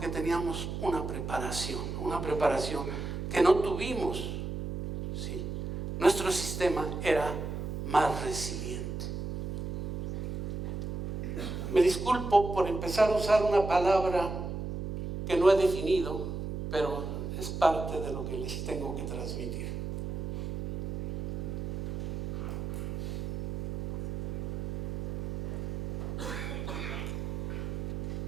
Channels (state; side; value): noise; right; hum, 4 dB below the sound